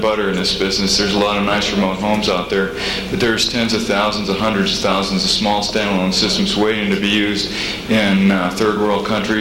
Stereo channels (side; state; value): both; identical; correlation 1.00